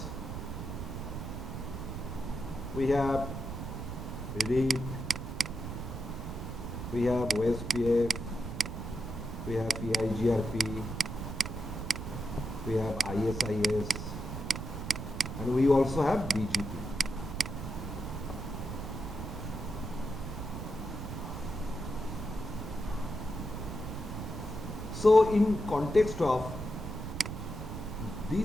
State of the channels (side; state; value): right; noise; rumble, 6 dB below the sound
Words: We have RIP, we have OSPF, we have EIGRP, we have ISIS, and we also have BGP. So in context of